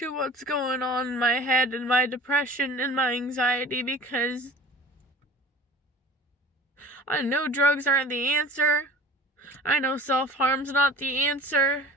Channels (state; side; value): normal; both; correlation 0.41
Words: what's going on in my head and my depression and my anxiety, because I know drugs aren't the answer. I know self-harm's not the answer.